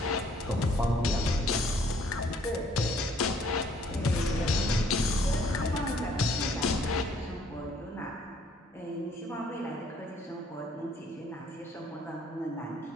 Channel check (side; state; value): both; normal; correlation 0.62